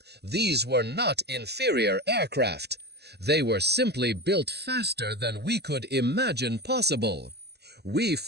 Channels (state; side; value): late; left; 0.48 ms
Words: These were not inferior aircraft. They were simply built faster than we could imagine possible. We